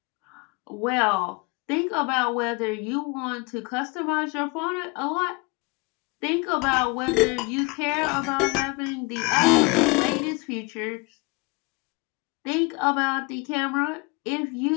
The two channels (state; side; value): quieter; right; 27.9 dB